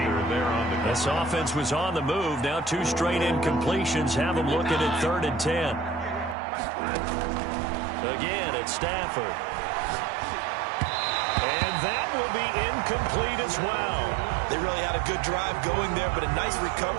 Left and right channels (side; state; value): left; drops out; at 6.4 s